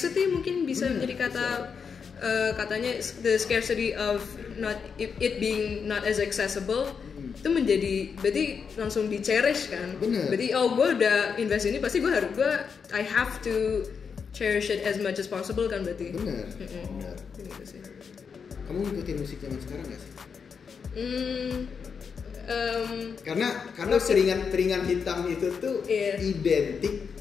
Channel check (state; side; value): quieter; right; 6.1 dB